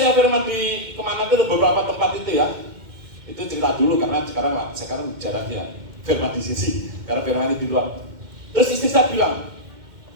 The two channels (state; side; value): late; left; 2.1 ms